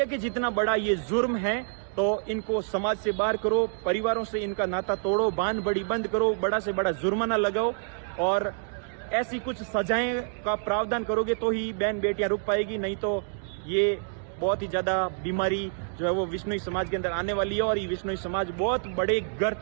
के जितना बड़ा ये जुर्म है तो इनको समाज से बाहर करो, परिवारों से इनका नाता तोड़ो, बांध बड़ी बंद करो, बड़ा से बड़ा जुर्माना लगाओ, और ऐसी कुछ सजाएं का प्रावधान करोगे तो ही बहन बेटियां रुक पाएगी, नहीं तो ये बहुत ही ज्यादा बीमारी जो है वो विश्नोई समाज के अंदर आने वाली है, और ये विश्नोई समाज बहुत बड़े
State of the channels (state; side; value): silent; left; digital silence